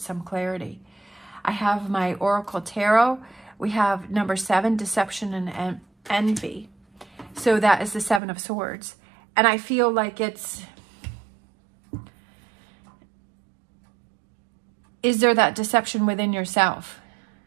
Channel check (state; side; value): drops out; left; at 8.2 s